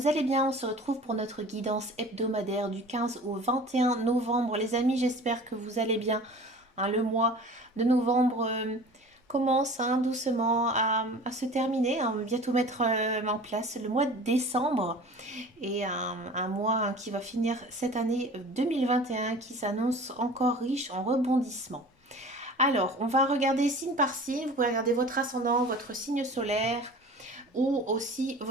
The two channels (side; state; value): both; normal; correlation 0.41